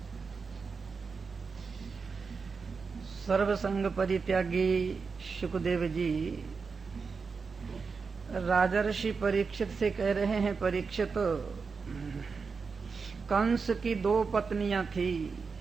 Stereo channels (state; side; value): quieter; left; 5.0 dB